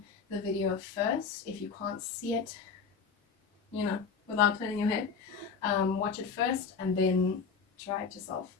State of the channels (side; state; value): right; quieter; 5.7 dB